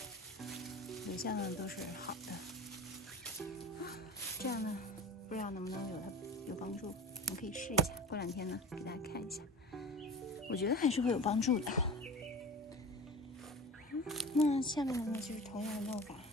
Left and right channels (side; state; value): both; normal; correlation 0.36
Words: 留下呢都是好的。这样呢不知道能不能有帮助，我们可以试一下，过2天呢给大家看一下，我觉得还是会有帮助的。那下面呢就是同样的弄法，